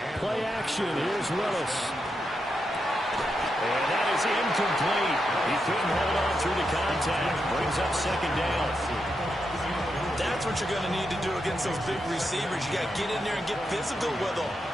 Play action. Here's Willis. And that is incomplete. He couldn't hold on through the contact. Brings up 2nd down. That's what you're going to need to do against those big receivers. You got to get in there and get physical with them.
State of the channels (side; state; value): both; normal; correlation 0.85